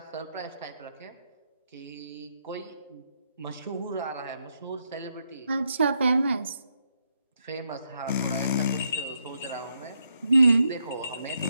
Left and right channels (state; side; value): inverted; both; correlation -0.79